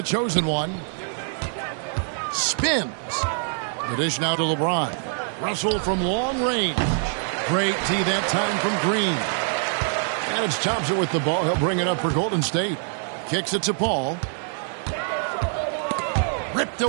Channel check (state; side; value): silent; left; digital silence